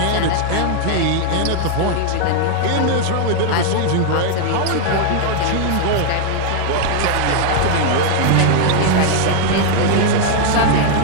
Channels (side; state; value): both; different; correlation 0.00